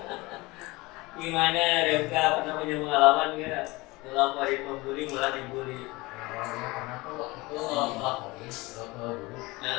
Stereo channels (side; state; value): right; quieter; 22.4 dB